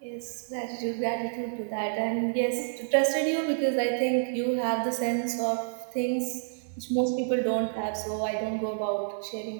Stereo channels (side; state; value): left; silent; 59 dB below the other